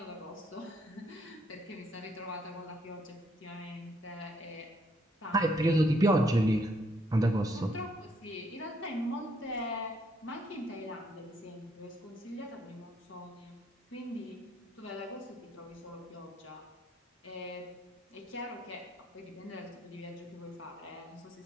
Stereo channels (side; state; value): both; normal; correlation 0.71